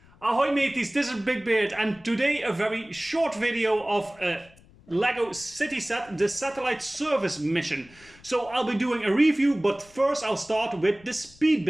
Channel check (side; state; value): left; noise; rumble, 26 dB below the sound